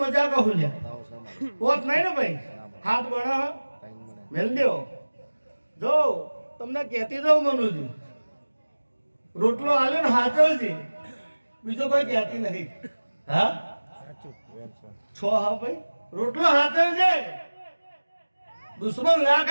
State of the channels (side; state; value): both; inverted; correlation -1.00